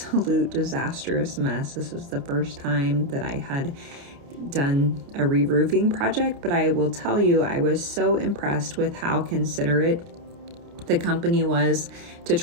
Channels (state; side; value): late; left; 29 ms